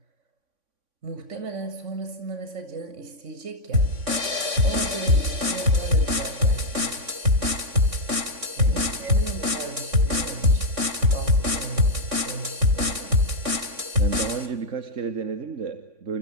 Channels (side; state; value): left; late; 3.6 ms